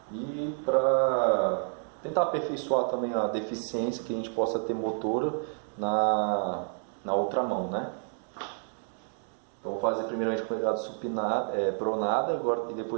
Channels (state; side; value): silent; left; 58 dB below the other